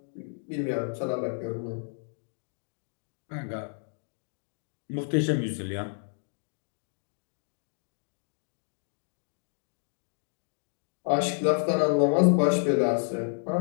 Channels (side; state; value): right; silent; digital silence